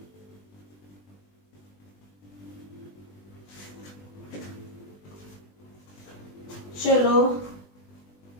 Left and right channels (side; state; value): right; late; 20 ms